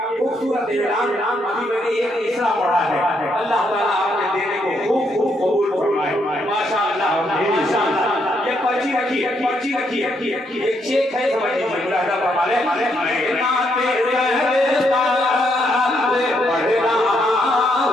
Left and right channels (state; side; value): normal; both; correlation 0.75